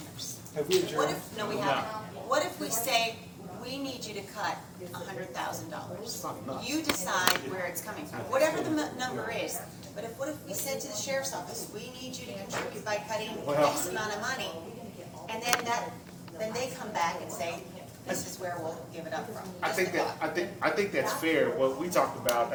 Have we What adjourned? if, no, we haven't. What if we say, we need you to cut $100,000? You decide where it's coming from, whatever the number is. But what if we said to the sheriff's office, we need you to contribute by cutting X amount of money? And then they come back and say, this is where we'll give it up from. I think that, I think that's fair. What we talked about,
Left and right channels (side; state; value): both; identical; correlation 1.00